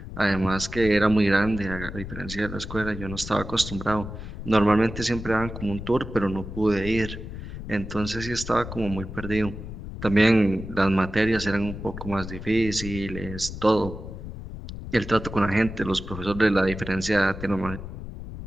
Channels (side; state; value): left; noise; rumble, 10 dB below the sound